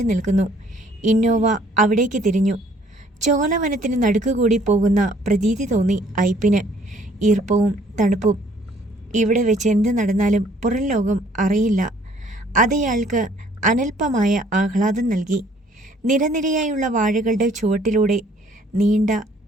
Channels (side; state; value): both; normal; correlation 0.60